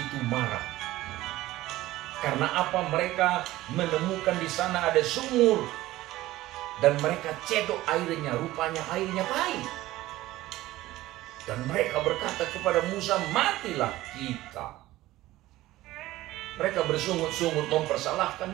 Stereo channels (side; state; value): left; quieter; 16.6 dB